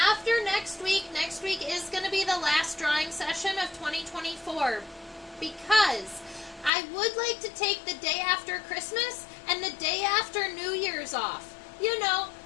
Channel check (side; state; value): right; drops out; at 6.7 s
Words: next week is going to be the last drawing session of 2024, because I would like to take the day after Christmas and the day after New Year's off, you know,